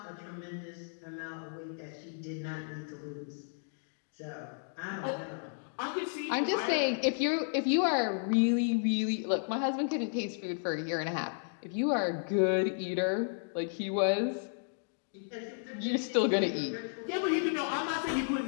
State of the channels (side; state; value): right; silent; digital silence